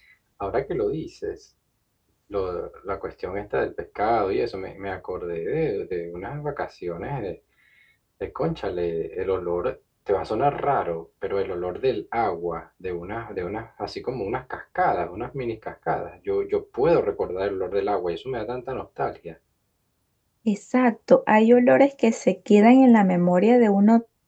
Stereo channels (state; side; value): identical; both; correlation 1.00